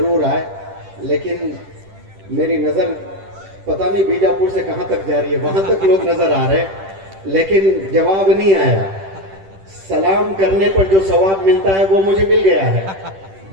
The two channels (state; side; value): late; left; 10 ms